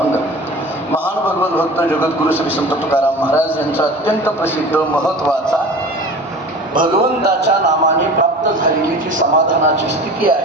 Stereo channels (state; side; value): normal; both; correlation 0.38